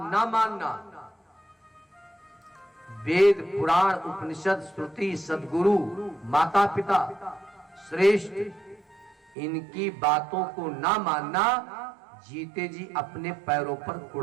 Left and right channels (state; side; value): drops out; left; at 9.3 s